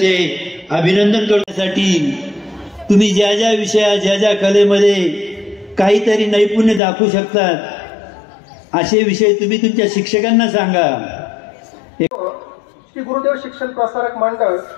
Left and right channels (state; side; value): drops out; right; at 6.8 s